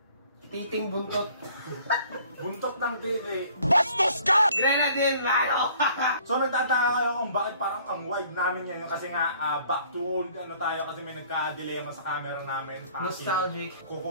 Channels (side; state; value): both; inverted; correlation -0.56